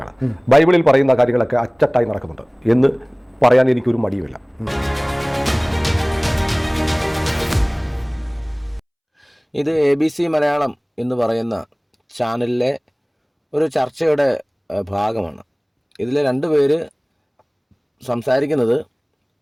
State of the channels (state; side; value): identical; both; correlation 1.00